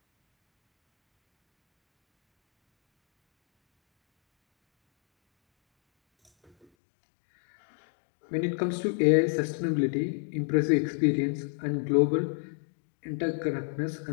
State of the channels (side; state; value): right; drops out; at 6.7 s